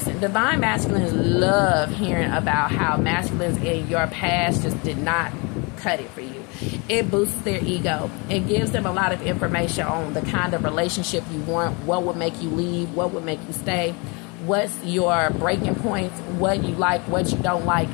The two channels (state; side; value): quieter; right; 30.1 dB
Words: divine masculines love hearing about how masculines in your past just did not cut it for you. It boosts their ego. It gives them a lot of information on the kind of relationship you want, what would make you leave, what would make you stay, what's your breaking points, what you like, what you don't like.